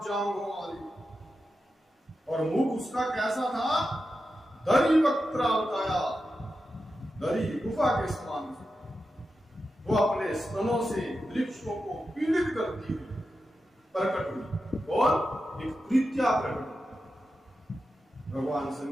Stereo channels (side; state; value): both; normal; correlation 0.90